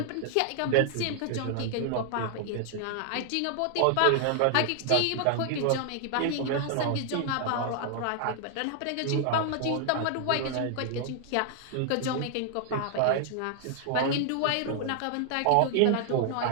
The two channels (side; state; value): both; different; correlation 0.00